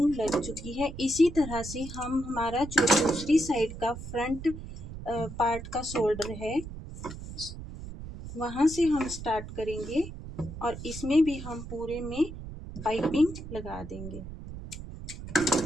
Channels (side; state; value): right; noise; rumble, 11 dB below the sound